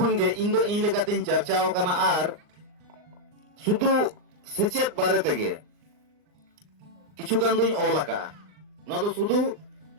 गे इन दो इन लेकातिन चर्चाओ कना आर सुदु सेचेत बारे तेगे किछु गान दुई ओलाका ना तो सुदु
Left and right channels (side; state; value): left; late; 39 ms